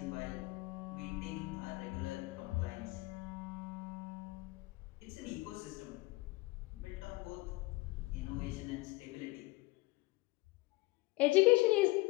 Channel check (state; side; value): quieter; right; 22.2 dB